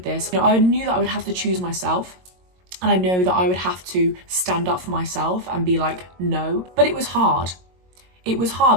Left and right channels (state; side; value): late; left; 22 ms